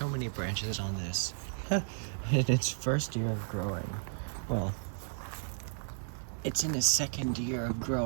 many branches on this in its first year of growing. Well, it's in its second year of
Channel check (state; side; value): silent; left; 55 dB below the other